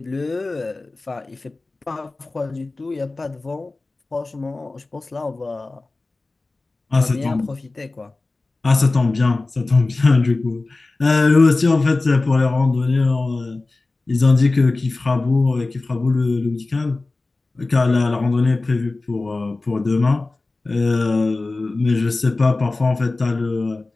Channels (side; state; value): right; quieter; 3.3 dB